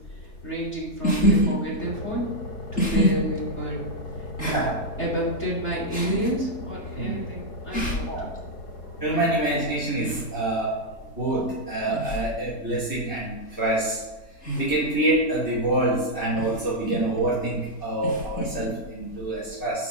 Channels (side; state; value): right; late; 3.8 ms